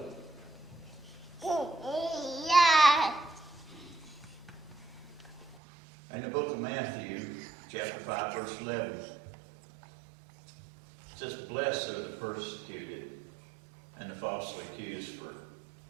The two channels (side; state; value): left; drops out; at 5.6 s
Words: In the book of Matthew, chapter 5, verse 11, it says, "Blessed are the persecuted and the falsely accused for